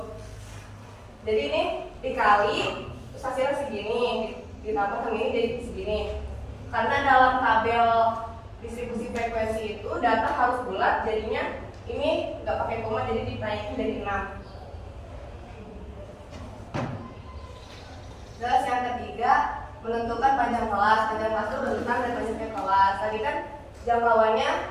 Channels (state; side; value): identical; both; correlation 1.00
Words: Jadi ini dikali terus hasilnya segini, ditambah sama ini jadi segini. Karena dalam tabel distribusi frekuensi itu data harus bulat, jadinya ini nggak pakai koma, jadi dinaikin dari 6. Terus yang ketiga menentukan panjang kelas. Panjang kelas itu rentang dan banyaknya kelas. Tadi kan jangkauannya